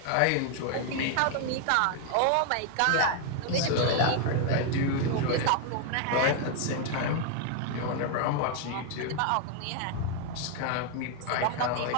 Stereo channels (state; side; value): different; both; correlation 0.00